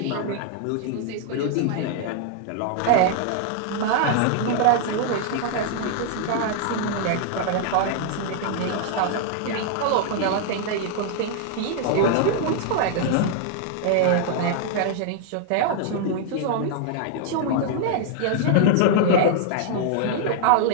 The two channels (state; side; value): different; both; correlation -0.01